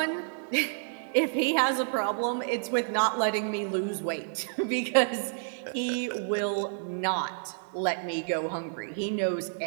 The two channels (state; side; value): silent; left; digital silence